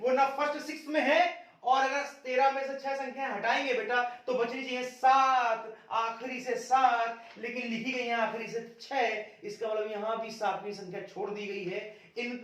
वो ना फर्स्ट 6 में है, और अगर 13 में से 6 संख्याएं हटाएंगे बेटा तो बचनी चाहिए 7, आखिरी से 7, लेकिन लिखी गई है आखिरी से 6, इसका मतलब यहां भी सातवीं संख्या छोड़ दी गई है,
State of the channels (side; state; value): both; identical; correlation 1.00